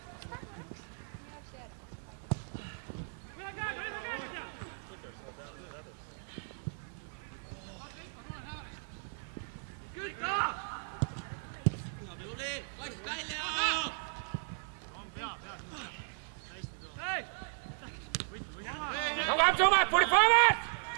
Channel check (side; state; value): left; silent; 54 dB below the other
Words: Come, Thomas, put it forward!